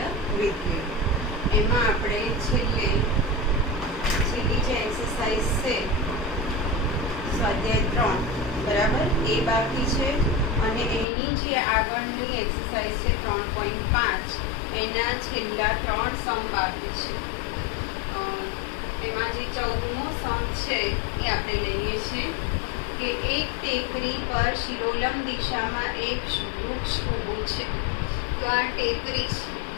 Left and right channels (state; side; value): drops out; right; at 11.1 s